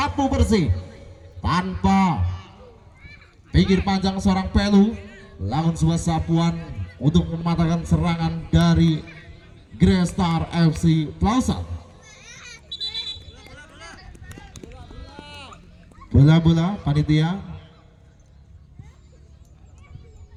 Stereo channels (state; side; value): identical; both; correlation 1.00